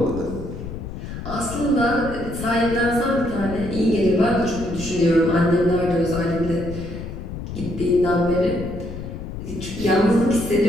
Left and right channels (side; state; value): left; noise; rumble, 9 dB below the sound